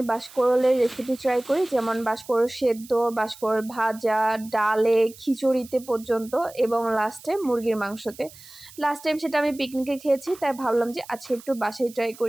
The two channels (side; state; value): right; noise; hiss, 20 dB below the sound